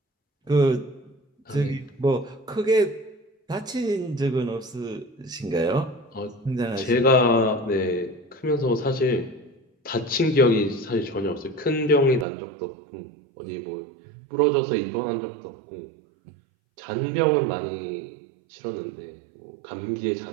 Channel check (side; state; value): left; drops out; at 12.2 s